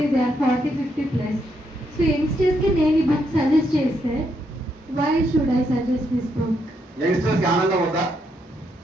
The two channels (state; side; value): normal; both; correlation 0.77